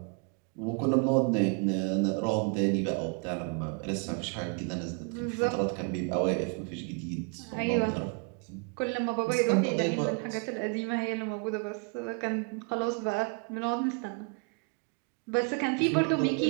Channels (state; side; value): quieter; left; 34.7 dB